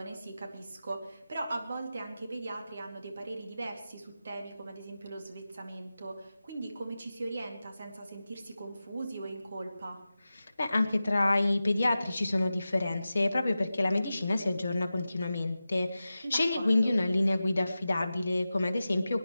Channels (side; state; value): both; inverted; correlation -0.94